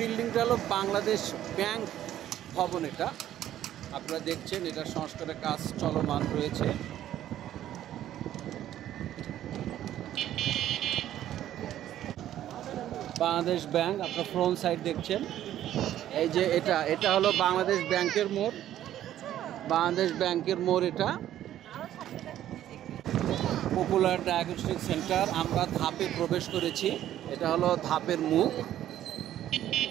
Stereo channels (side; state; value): left; quieter; 12.1 dB